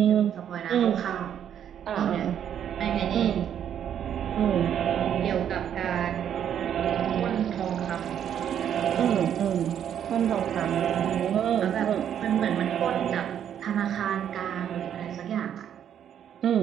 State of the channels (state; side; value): quieter; left; 9.4 dB